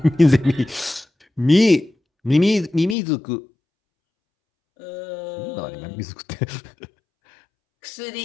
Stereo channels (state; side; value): drops out; right; at 3.0 s